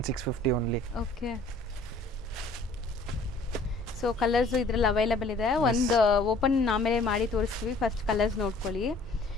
only. Okay. So colours ಇದ್ರಲ್ಲಿ ಅವೈಲೇಬಲ್ ಇದೆ. ಒಂದು ಓಪನ್ ಆಮೇಲೆ ಮಾಡಿ ತೋರಿಸ್ತೀವಿ. ಫಸ್ಟ್ ಕಲರ್ಸ್ ನೋಡ್ಕೊಳ್ಳಿ.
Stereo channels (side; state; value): right; quieter; 3.2 dB